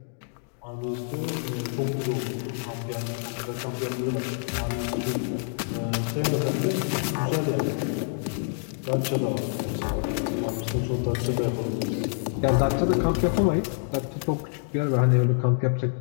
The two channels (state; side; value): silent; right; digital silence